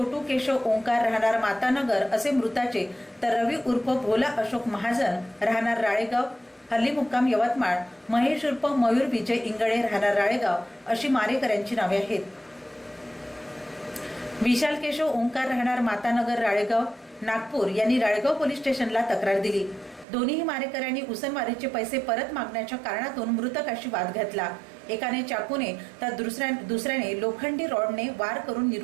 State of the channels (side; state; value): left; drops out; at 20.1 s